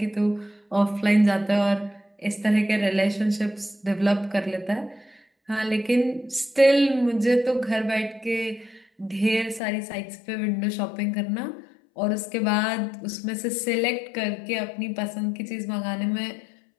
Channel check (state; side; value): drops out; right; at 9.6 s